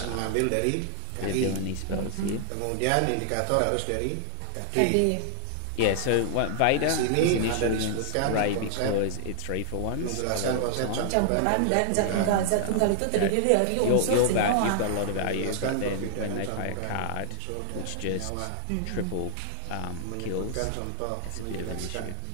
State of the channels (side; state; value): both; different; correlation -0.01